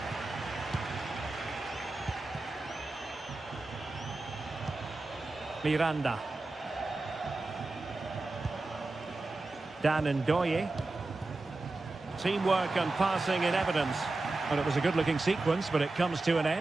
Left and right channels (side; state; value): left; quieter; 3.2 dB